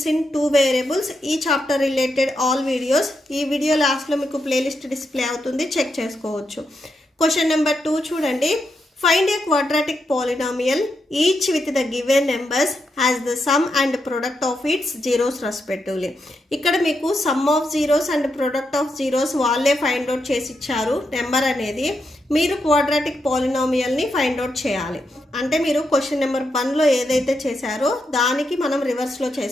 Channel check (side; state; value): both; normal; correlation 0.83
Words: in 2 variables ఈ చాప్టర్ రిలేటెడ్ ఆల్ వీడియోస్ ఈ వీడియో లాస్ట్లో మీకు ప్లేలిస్ట్ డిస్ప్లే అవుతుంది, చెక్ చేసుకోవచ్చు. క్వశ్చన్ నెంబర్ 2 చూడండి. Find a quadratic polynomial each with the given numbers has the sum and product of its zeros respectively. ఇక్కడ మీకు sum of zeros and product of zeros వాళ్ళే find out చేసి ఇచ్చారు. Number అనేది మీరు quadratic పాలినామియల్ని find out చేయాలి. అంటే మీరు క్వశ్చన్ నెంబర్ 1లో ఏదైతే చేశారో దానికి మనం రివర్స్లో